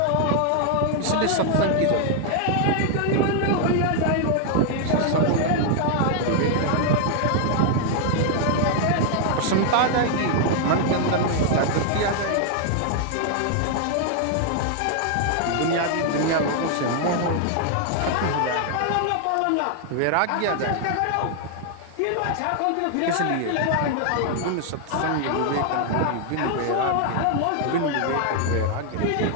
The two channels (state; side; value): different; both; correlation 0.00